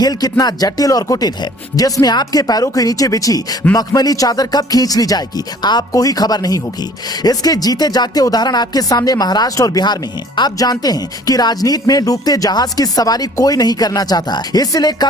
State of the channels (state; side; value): normal; both; correlation 0.52